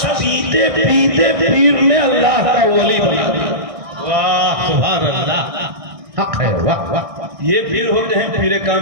پیتے پیتے پیر نے اللہ کا ولی بنا دیا. واہ سبحان اللہ, حق ہے. واہ واہ. یہ پیر ہوتے ہیں پیر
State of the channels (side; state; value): left; late; 1.6 ms